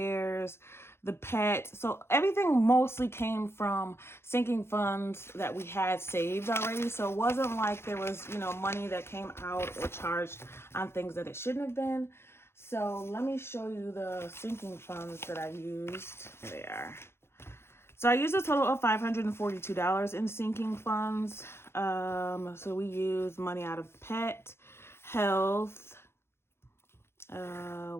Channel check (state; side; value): late; right; 0.12 ms